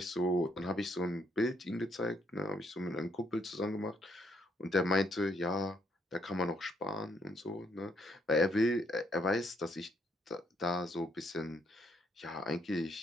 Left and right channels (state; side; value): normal; both; correlation 0.72